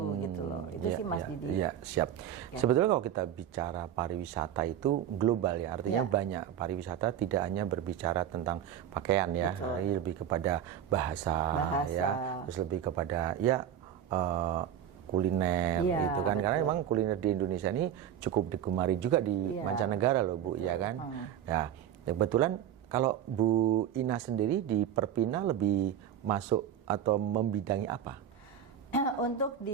gitu loh. Itu sih Mas Didi. Iya, siap. Sebetulnya kalau kita bicara pariwisata itu global ya, artinya banyak. Pariwisata tidak hanya berbicara tentang pakaian ya, tapi lebih kepada bahasa. Ya, terus lebih kepada kuliner gitu kan. Karena memang kuliner di Indonesia ini cukup digemari juga di mancanegara loh Bu, ya kan. Ya, kebetulan kalau Bu Ina sendiri di Perpina lebih masuk atau membidangi apa? Untuk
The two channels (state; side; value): quieter; left; 9.7 dB